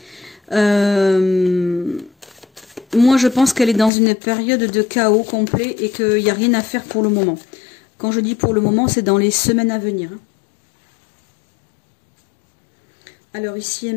Moi, je pense qu'elle est dans une période de chaos complet et qu'il n'y a rien à faire pour le moment. Quand je dis pour le moment, c'est dans les semaines à venir. Hein. Alors, ici et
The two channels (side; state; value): right; drops out; at 3.9 s